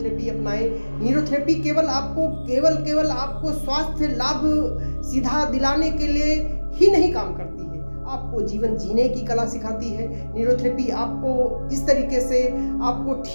अपनाएं। न्यूरोथेरेपी केवल आपको स्वास्थ्य लाभ सीधा दिलाने के लिए ही नहीं काम करती है, आपको जीवन जीने की कला सिखाती है। न्यूरोथेरेपी आपको इस तरीके से आपको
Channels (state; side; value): inverted; both; correlation -1.00